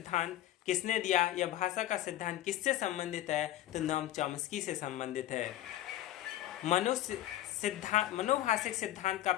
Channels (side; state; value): right; quieter; 13.8 dB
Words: किसने दिया या भाषा का सिद्धांत किससे संबंधित है, तो नोम चॉम्स्की से संबंधित है। मनोभाषिक सिद्धांत का